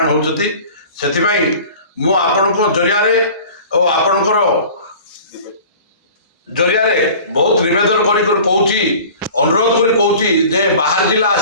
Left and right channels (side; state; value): both; inverted; correlation -0.43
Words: होती से मु आपण जरिया और आपणकर जरिया बहुत निवेदन कर अनुरोध कर बाहर जिला